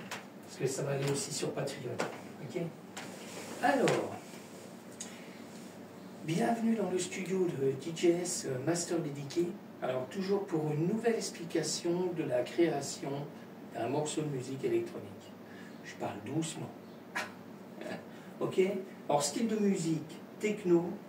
Parce que ça va aller aussi sur Patreon. Ok ? Alors, bienvenue dans le studio de DJS Master Dédié. Alors, toujours pour une nouvelle explication de la création d'un morceau de musique électronique. Je parle doucement. Ok ? Alors, style de musique, techno,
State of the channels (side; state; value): both; identical; correlation 1.00